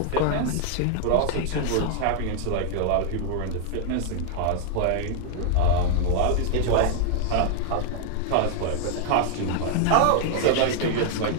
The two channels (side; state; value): both; different; correlation 0.00